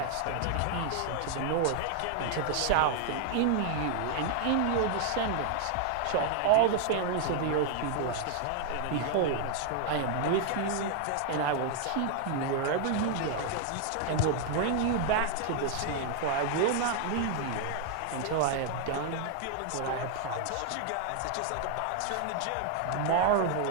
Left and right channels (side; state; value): both; different; correlation 0.00